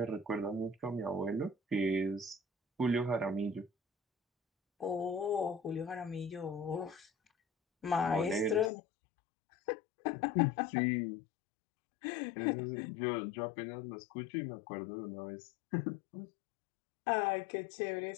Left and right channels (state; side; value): drops out; right; at 8.7 s